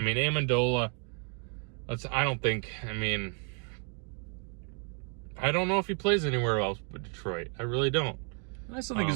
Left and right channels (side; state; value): left; quieter; 39.6 dB